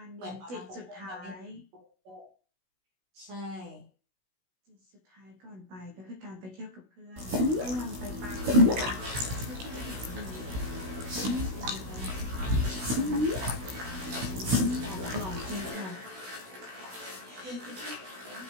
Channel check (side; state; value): left; late; 16 ms